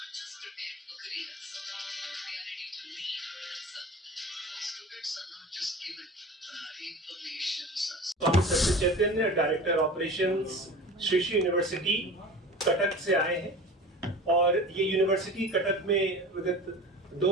just prepared for careers, they are ready to lead and serve. Students are not just given information. Swami Satya Chaitanya, director operations, Shri Shri university Cuttack से आए हैं और ये university Cuttack में विगत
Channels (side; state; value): both; normal; correlation 0.37